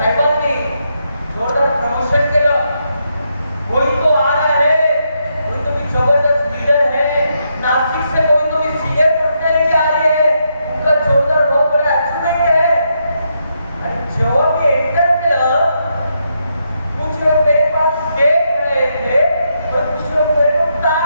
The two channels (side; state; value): both; inverted; correlation -0.80